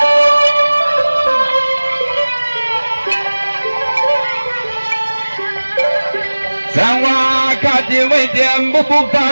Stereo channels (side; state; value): both; inverted; correlation -1.00